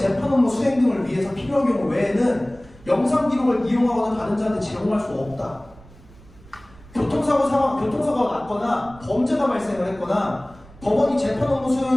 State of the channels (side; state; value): right; noise; rumble, 23 dB below the sound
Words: 업무 수행 등을 위해서 필요한 경우 외에는 영상 기록을 이용하거나 다른 자한테 제공할 수 없다. 교통사고가 났거나 범죄가 발생을 했거나 법원이 재판 업무